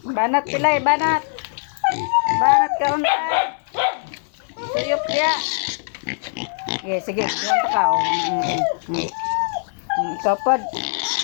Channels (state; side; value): silent; right; 58 dB below the other